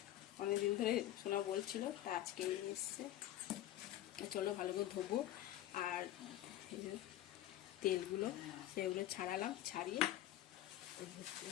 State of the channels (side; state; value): right; quieter; 13.5 dB